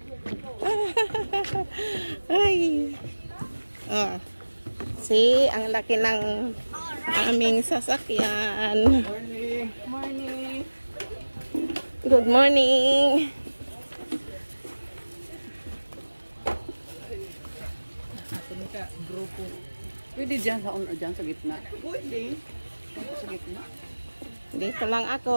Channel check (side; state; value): both; inverted; correlation -1.00